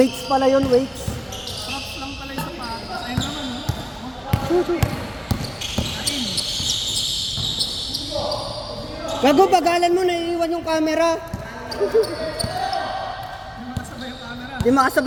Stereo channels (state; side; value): identical; both; correlation 1.00